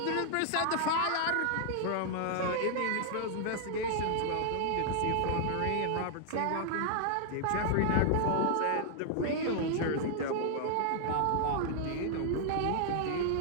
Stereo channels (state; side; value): different; both; correlation -0.01